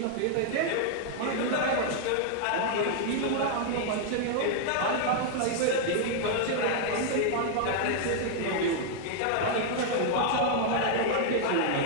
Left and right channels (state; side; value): different; both; correlation -0.01